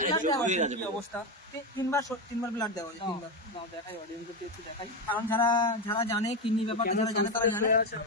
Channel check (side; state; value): both; normal; correlation 0.12